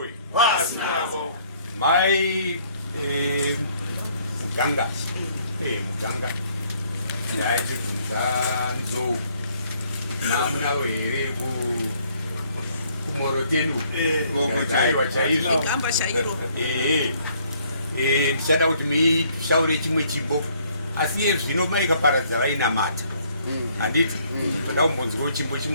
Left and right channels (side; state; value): both; inverted; correlation -0.64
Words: Pasinavo. Mai Muganga ndaiti kunzanzo namna were kumorotenu ndaiwa chaizvo ndichada kuti mishaure chimwe chimbo asi iye zvino maikaparadza vainamata handiti toda kumbonzwawo chimbo